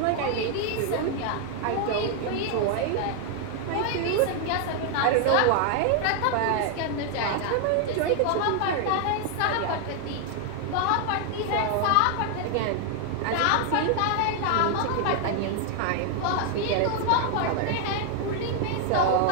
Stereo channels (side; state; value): both; different; correlation 0.00